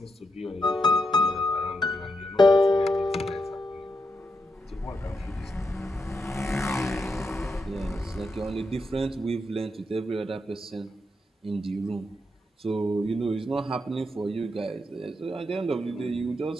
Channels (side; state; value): both; normal; correlation 0.83